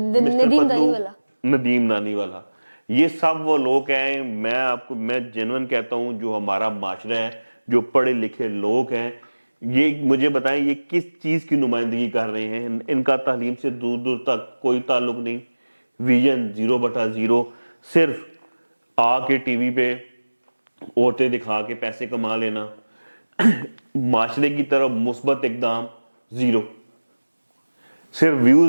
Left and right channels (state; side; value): inverted; both; correlation -1.00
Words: ندیم نانی والا، یہ سب وہ لوگ ہیں. میں جنون کہتا ہوں جو ہمارا معاشرہ ہے، جو پڑھے لکھے لوگ ہیں، یہ مجھے بتائیں یہ کس چیز کی نمائندگی کر رہے ہیں؟ ان کا تعلیم سے دور دور تک کوئی تعلق نہیں، ویژن 0/0، صرف آ کے ٹی وی پہ عورتیں دکھا کے پیسے کما لینا، معاشرے کی طرف مثبت اقدام 0، صرف